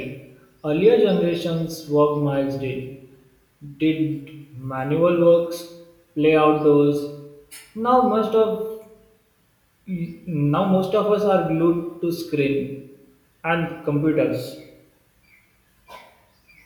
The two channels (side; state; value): both; identical; correlation 1.00